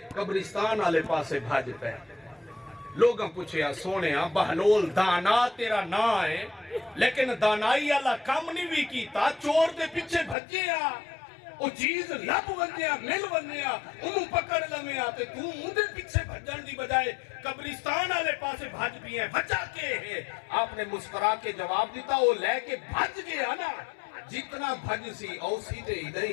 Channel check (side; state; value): right; drops out; at 10.4 s